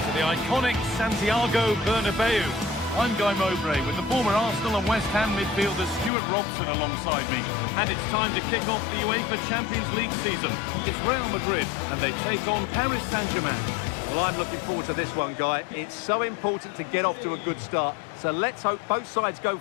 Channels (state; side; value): drops out; right; at 6.1 s